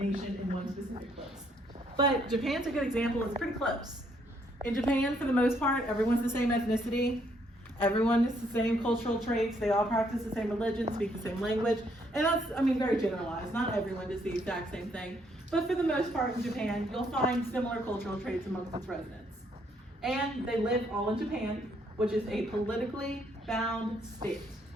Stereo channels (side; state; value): both; normal; correlation 0.70